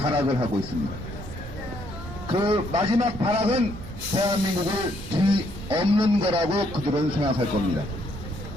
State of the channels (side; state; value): right; noise; rumble, 11 dB below the sound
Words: 하고 있습니다. 그 마지막 발악은 대한민국을 뒤엎는 거라고 그들은 생각할 겁니다.